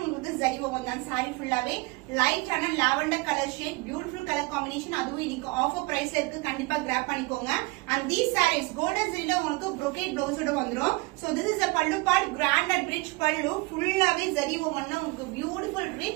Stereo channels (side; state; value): left; quieter; 25.3 dB